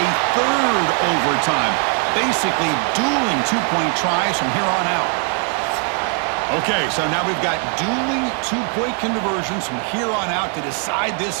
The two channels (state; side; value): quieter; left; 39.9 dB